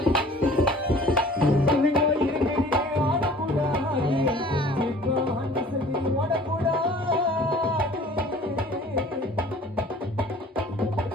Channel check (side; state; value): both; normal; correlation 0.48